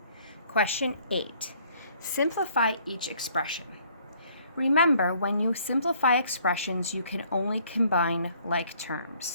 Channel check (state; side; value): inverted; both; correlation -0.61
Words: Question 8. Simplify each expression. Remember, when you simplify expressions, you can only combine like